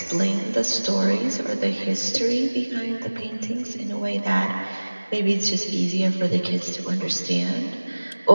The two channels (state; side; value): inverted; both; correlation -1.00